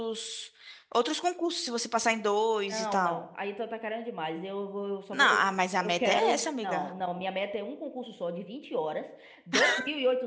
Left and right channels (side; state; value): both; identical; correlation 1.00